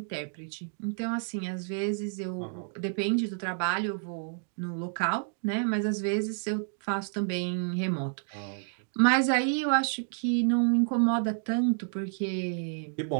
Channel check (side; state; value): left; silent; 58 dB below the other